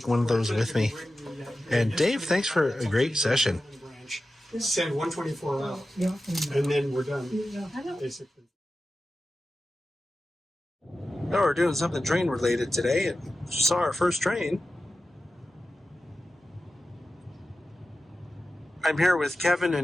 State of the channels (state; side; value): normal; both; correlation 0.93